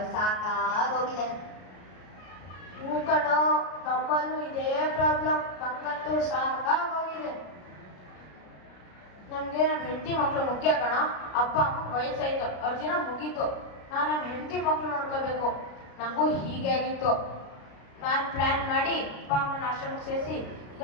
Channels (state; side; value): late; right; 33 ms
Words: ಸಾಕಾಗೋಗಿದೆ. ಹೂ ಕಣೋ, ನಮ್ಮಲ್ಲೂ ಇದೇ ಪ್ರಾಬ್ಲಮ್. ನಂಗಂತೂ ಸಾಕಾಗೋಗಿದೆ. ನಮ್ಗೆ ನಮ್ಮ ಹೆಂಡತಿ ಮಕ್ಳು ಮುಖ್ಯ ಕಣ. ಅಪ್ಪ ಅಮ್ಮ ವಯಸ್ಸಾಯ್ತು, ಅವ್ರ ಜನ ಮುಗೀತು. ನಾನು ನಮ್ಮ ಹೆಂಡತಿ ಮಕ್ಳು ನೋಡ್ಕೋಬೇಕು. ನಂಗೂ ಹೀಗೆ ಆಗಿತ್ತು. ನಾನು ಪ್ಲಾನ್ ಮಾಡಿ ಅಪ್ಪ ಅಮ್ಮನ ಆಶ್ರಮಕ್ಕೆ ಸೇರಿಸಿ ಈಗ